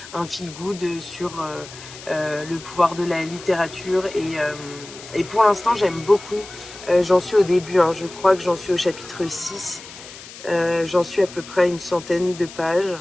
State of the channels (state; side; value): noise; left; hiss, 16 dB below the sound